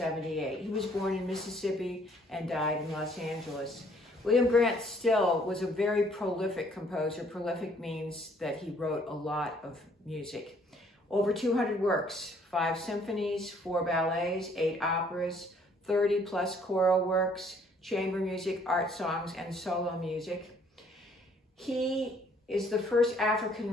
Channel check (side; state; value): both; normal; correlation 0.62